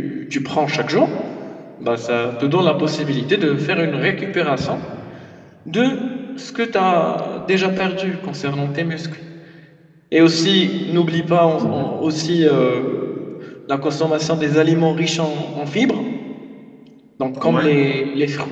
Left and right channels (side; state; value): both; identical; correlation 1.00